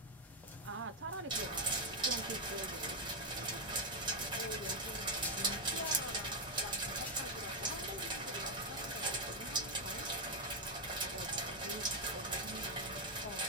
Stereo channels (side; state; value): both; normal; correlation 0.02